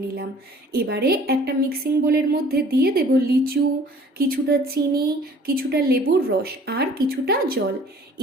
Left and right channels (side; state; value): both; normal; correlation 0.52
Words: নিলাম। এবারে একটা মিক্সিং বোলের মধ্যে দিয়ে দেব লিচু, কিছুটা চিনি, কিছুটা লেবুর রস আর কিছুটা জল।